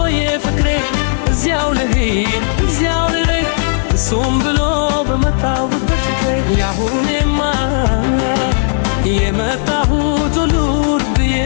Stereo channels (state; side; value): silent; right; digital silence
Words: ፍቅሬ እዚያው ልሂድ እዚያው ልሂድ እሱም ብሎ በመጣሁበት ፍቅሬ ያሁኔማ የመጣሁት ሉጥዬ